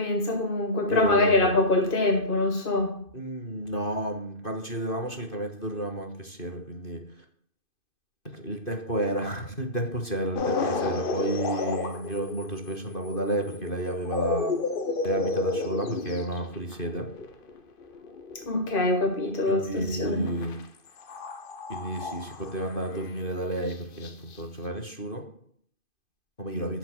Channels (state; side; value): late; right; 2.5 ms